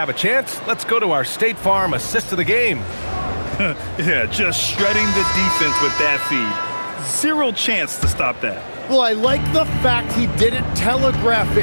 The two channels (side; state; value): both; inverted; correlation -1.00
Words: a chance, let's go to our State Farm assist of the game. Yeah, just shredding the defense with that feed. Zero chance to stop that. Well, I like the fact he didn't telegraph